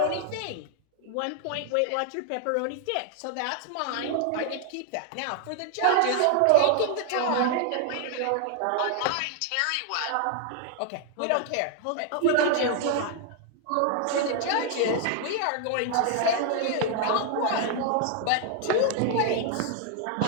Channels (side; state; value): both; different; correlation 0.00